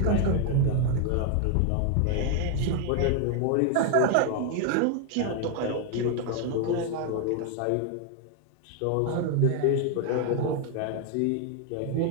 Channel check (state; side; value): different; both; correlation 0.00